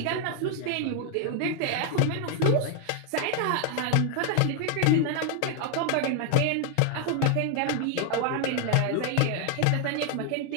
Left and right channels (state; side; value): different; both; correlation 0.00